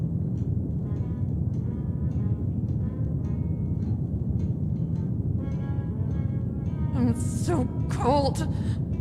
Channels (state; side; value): identical; both; correlation 1.00